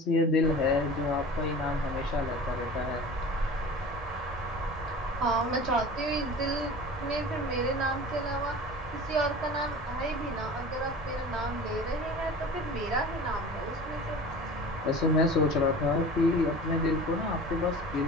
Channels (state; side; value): normal; both; correlation 0.38